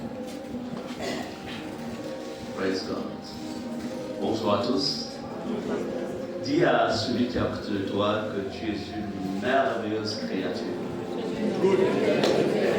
Praise God. Bonsoir à tous. Dis à celui qui est à côté de toi que tu es une merveilleuse créature. Good.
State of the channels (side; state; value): both; identical; correlation 1.00